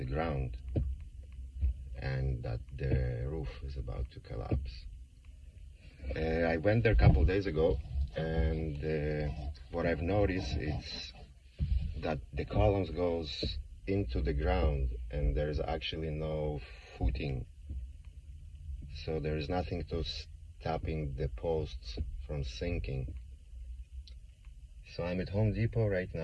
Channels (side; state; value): both; identical; correlation 1.00